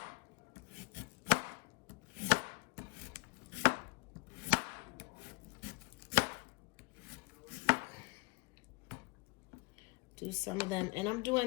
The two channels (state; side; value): quieter; right; 26.1 dB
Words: Do some of them, and I'm